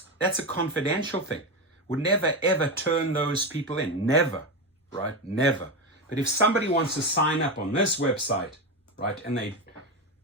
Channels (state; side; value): normal; both; correlation 0.15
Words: a confidential thing. Would never, ever turn those people in. Never, right? Never. But if somebody wants to sign up on this website, right, and they